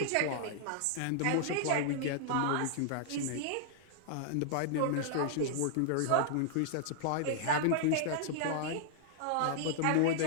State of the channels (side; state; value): both; different; correlation -0.01